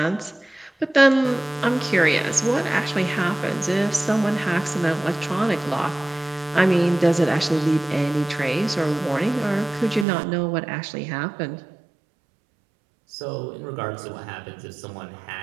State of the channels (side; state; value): left; drops out; at 10.1 s